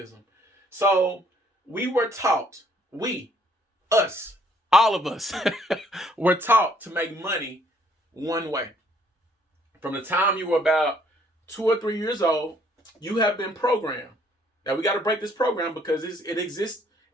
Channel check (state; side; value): normal; both; correlation 0.65